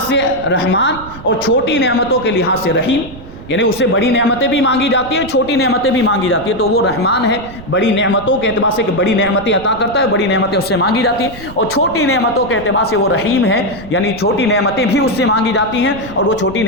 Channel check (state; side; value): noise; right; rumble, 16 dB below the sound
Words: سے رحمان اور چھوٹی نعمتوں کے لحاظ سے رحیم، یعنی اس سے بڑی نعمتیں بھی مانگی جاتی ہیں، چھوٹی نعمتیں بھی مانگی جاتی ہیں۔ تو وہ رحمان ہے بڑی نعمتوں کے اعتبار سے کہ بڑی نعمتیں عطا کرتا ہے، بڑی نعمتیں اس سے مانگی جاتی ہیں، اور چھوٹی نعمتوں کے اعتبار سے وہ رحیم ہے، یعنی چھوٹی نعمتیں بھی اس سے مانگی جاتی ہیں اور وہ چھوٹی